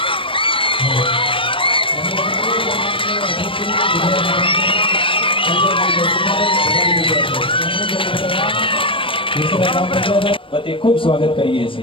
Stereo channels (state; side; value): late; right; 0.25 ms